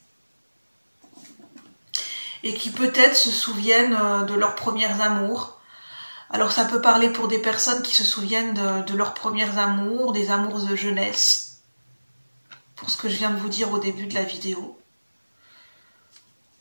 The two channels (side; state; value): both; inverted; correlation -1.00